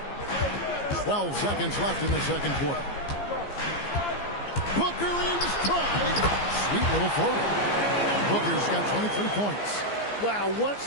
12 seconds left in the second quarter. Booker in stride. Sweet little floater. Booker's got 23 points. Wow, what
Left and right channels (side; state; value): right; late; 15 ms